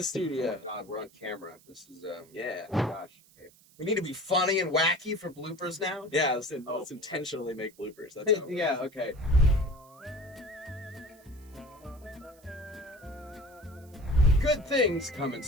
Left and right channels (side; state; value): right; noise; hiss, 27 dB below the sound